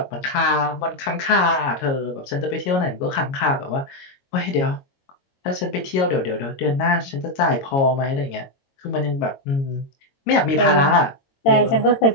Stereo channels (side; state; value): right; late; 22 ms